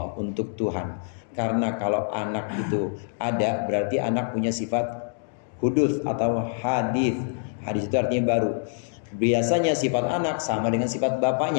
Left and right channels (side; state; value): right; silent; digital silence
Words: untuk Tuhan. Karena kalau anak itu ada, berarti anak punya sifat hudus atau hadis. Hadis itu artinya baru. Biasanya sifat anak sama dengan sifat